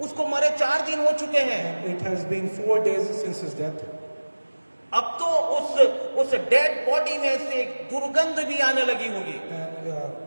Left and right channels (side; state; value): both; inverted; correlation -1.00